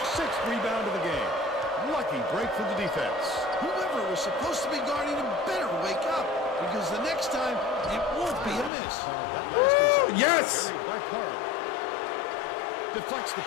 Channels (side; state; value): right; drops out; at 8.7 s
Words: 6th rebound of the game. Lucky break for the defense. Whoever was supposed to be guarding him better wake up, because the next time it won't be a miss. Woo! Yes! Carried by Parham. Deflects the